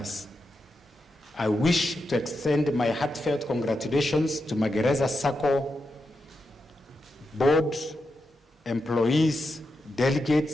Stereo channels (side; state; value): both; normal; correlation 0.87